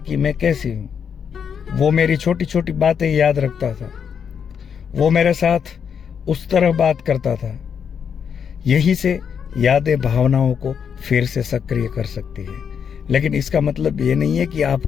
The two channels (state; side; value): quieter; right; 7.3 dB